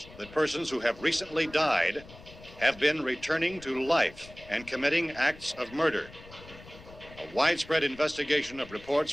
that persons who have recently died have been returning to life and committing acts of murder. A widespread investigation of reports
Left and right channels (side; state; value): left; noise; rumble, 19 dB below the sound